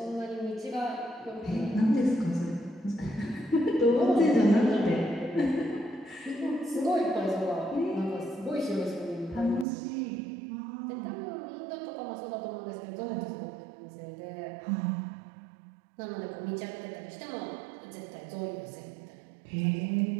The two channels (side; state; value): left; drops out; at 9.7 s